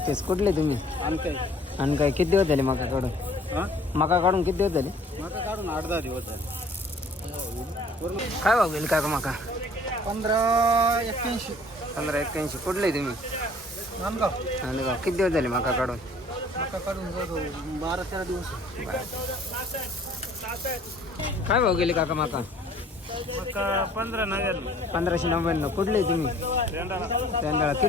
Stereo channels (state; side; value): normal; both; correlation 0.54